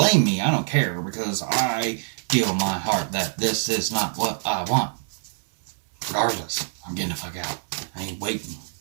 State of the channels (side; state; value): left; silent; 62 dB below the other